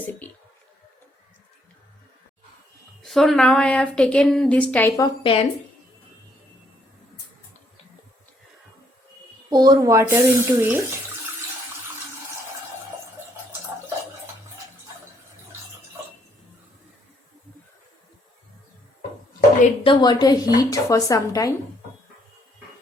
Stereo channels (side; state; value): both; normal; correlation 0.69